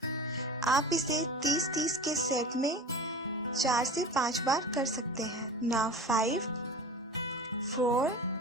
आप इसे 30-30 के सेट में 4 से 5 बार कर सकते हैं। Now 5, 4,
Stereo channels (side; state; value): both; normal; correlation 0.35